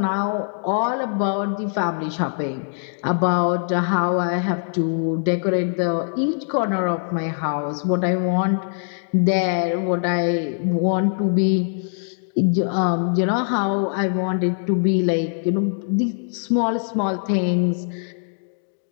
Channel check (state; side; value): silent; right; digital silence